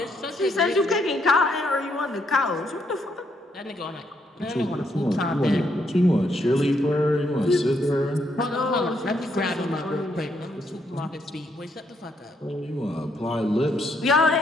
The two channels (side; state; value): both; normal; correlation 0.75